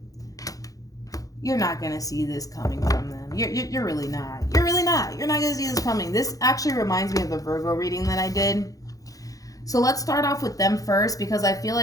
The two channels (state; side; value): late; right; 0.17 ms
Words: You're not going to see this coming from them. You're really not. You're really not. You're not going to see this coming. This actually reminds me of the Virgo reading that I did. So let's start off with them first, because I feel